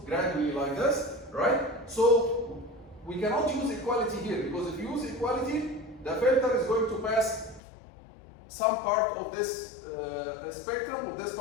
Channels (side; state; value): right; drops out; at 7.6 s